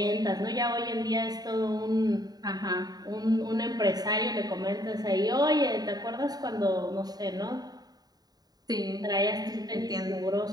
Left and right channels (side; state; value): left; late; 0.19 ms